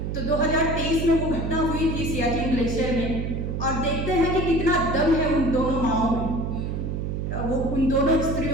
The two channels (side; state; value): right; noise; hum, 2 dB below the sound